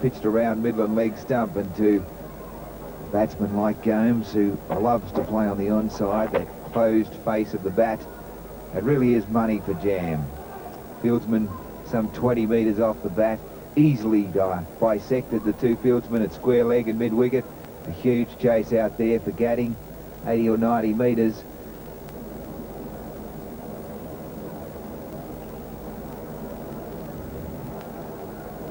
pitched around Midland leg stump, and to a batsman like Gomes, who loves to play on the onside, that closed face of the bat, it really is money for jam. Fieldsman some 20 metres off the bat, easily bisected the two fieldsmen at square leg and mid-wicket. A huge chase out there for Gadding, 80 or 90 metres.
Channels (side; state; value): both; identical; correlation 1.00